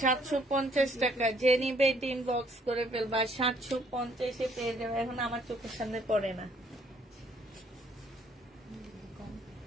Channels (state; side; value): normal; both; correlation 0.64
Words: 750 টাকা। যে নিবে ইনবক্স করে ফেলবা, 750 পেয়ে যাবে। এখন আমার চোখের সামনে পড়ে না।